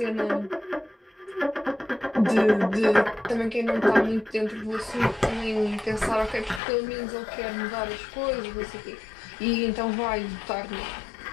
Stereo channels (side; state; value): right; drops out; at 6.6 s